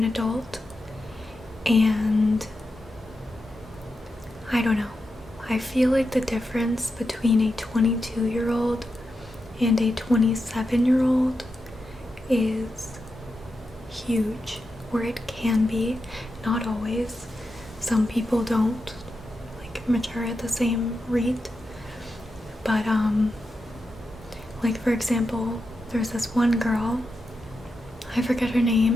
adult, and I don't know. I feel like the difference between a 22-year-old and a 27-year-old is huge, or it can be. Not always. Some people don't like mature at the same rate, but like, for example, there's this one girl, I forget her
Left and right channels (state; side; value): normal; both; correlation 0.88